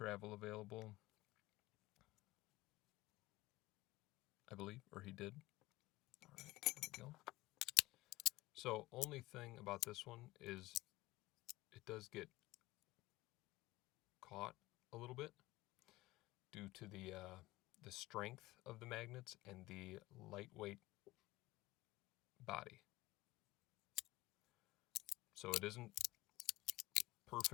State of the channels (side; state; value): right; quieter; 18.8 dB